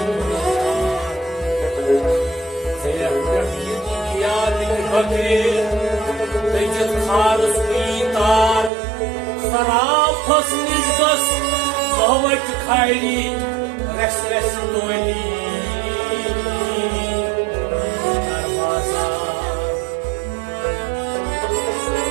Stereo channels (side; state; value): left; drops out; at 8.7 s